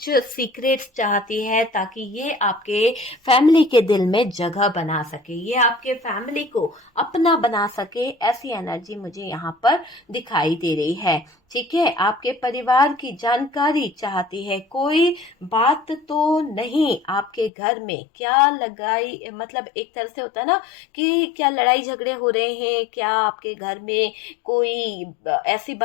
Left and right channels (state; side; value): drops out; right; at 17.5 s